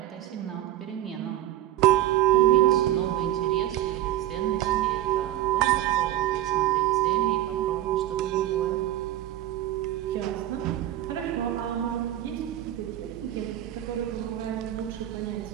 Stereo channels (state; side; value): quieter; left; 13.6 dB